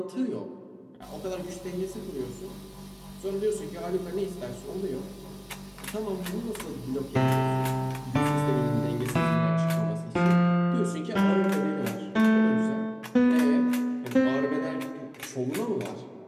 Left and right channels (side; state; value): both; identical; correlation 1.00